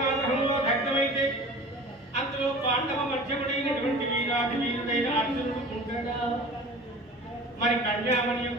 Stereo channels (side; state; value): both; normal; correlation 0.40